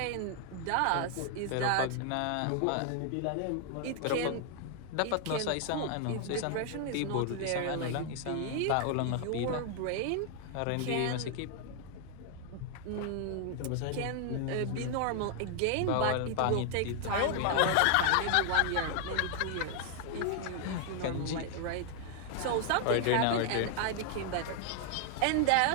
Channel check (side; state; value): both; different; correlation 0.00